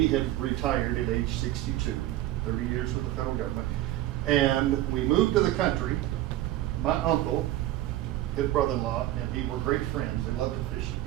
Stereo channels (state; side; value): quieter; left; 14.7 dB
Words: had retired at age 62, 30 years with the federal government. And we moved to the country. My uncle his brother-in-law, and he were great friends. They loved to fish